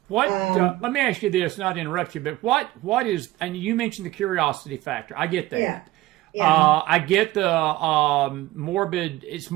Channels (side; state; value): left; quieter; 17.1 dB